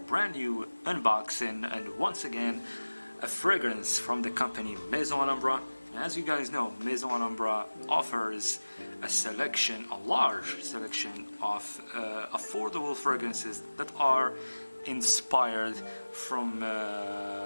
new unboxing, and once again a fragrance from the company Maison Alhambra. As you guys know, Maison Alhambra offers a large selection of affordable fragrances that are inspired from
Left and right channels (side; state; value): both; inverted; correlation -1.00